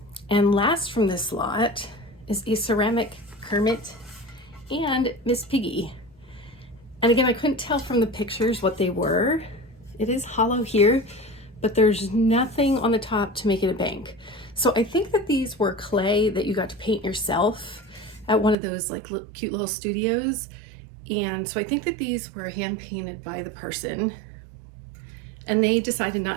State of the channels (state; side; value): drops out; left; at 18.6 s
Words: And last from this lot is a ceramic Kermit and Miss Piggy. And again, I couldn't tell from the pictures what they were. It is hollow here, but there's nothing on the top to make it a bank. So I think that these were clay that you got to paint yourself at one of those like cute little studios. And so I think that these were hand painted by the person and they decided